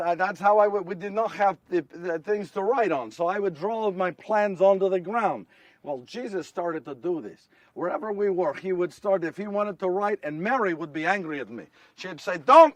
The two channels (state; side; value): identical; both; correlation 1.00